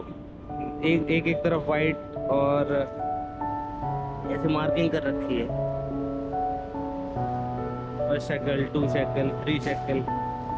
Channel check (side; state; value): both; identical; correlation 1.00